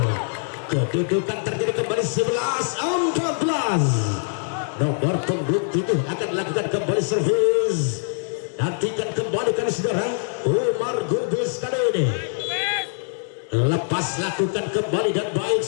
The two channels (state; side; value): silent; right; digital silence